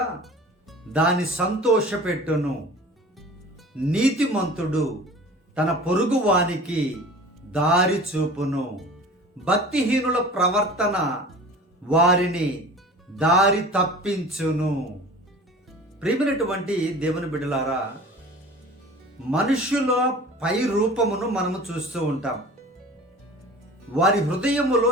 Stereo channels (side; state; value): both; normal; correlation 0.41